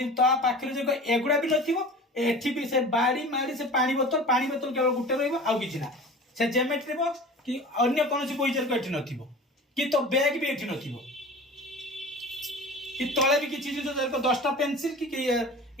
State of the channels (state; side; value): normal; both; correlation 0.38